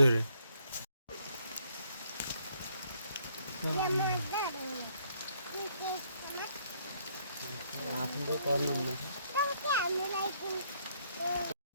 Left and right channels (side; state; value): both; inverted; correlation -0.68